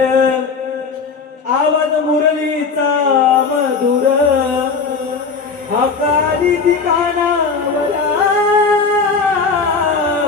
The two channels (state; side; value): quieter; right; 4.9 dB